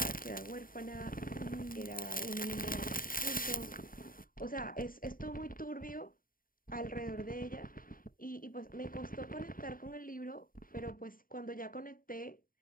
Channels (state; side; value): late; right; 0.41 ms